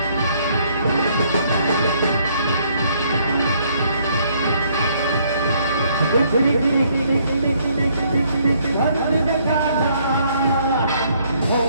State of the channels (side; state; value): both; inverted; correlation -0.67